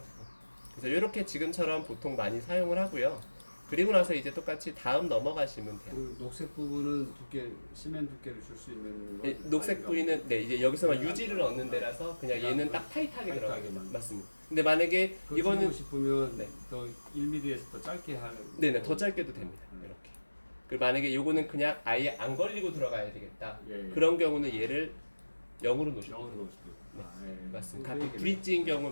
그래서 이렇게 지금처럼 보통 많이 사용을 하고요. 그리고 나서 이제 똑같이 다음 넘어가시면 돼요. 그 녹색 부분은 두께, 시멘 두께를 줄 수 있는 거. 녹색 부위는 네 이제 여기서만 네, 유지를 얻는 데라서 그냥 그냥 얘는 딱 타이트하게 들어가요. 타이트하게만. 맞습니다. 근데 만약에 그거 이거는 줄이고 싶으면 네. 더 1mm에서 더 짧게 하는. 네네 더 짧게도 됩니다. 이렇게. 그리고 만약에 요거는 그냥 아예 안 걸리고 들어가야 되겠다. 예, 예. 그런 경우는 얘를 0으로 놓으시면 영어로 돼요. 넣을 수도 있고. 네. 아, 예. 맞습니다. 그거 가끔 얘기를- 브릿지인 경우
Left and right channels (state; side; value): inverted; both; correlation -1.00